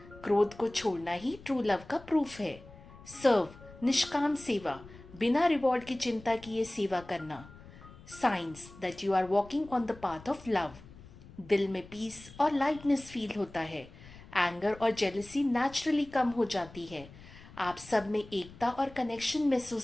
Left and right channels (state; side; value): noise; left; rumble, 19 dB below the sound